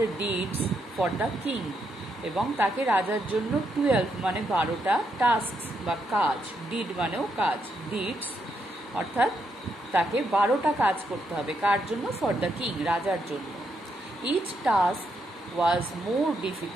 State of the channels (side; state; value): both; normal; correlation 0.79